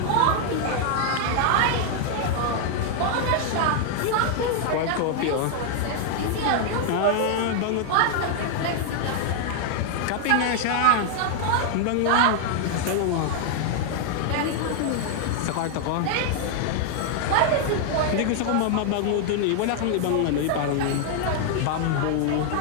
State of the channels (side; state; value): both; different; correlation 0.00